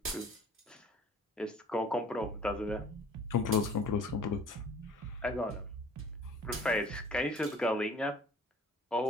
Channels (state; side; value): normal; both; correlation 0.50